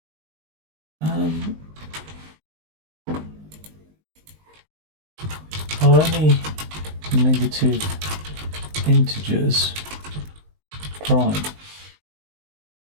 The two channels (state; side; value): late; left; 19 ms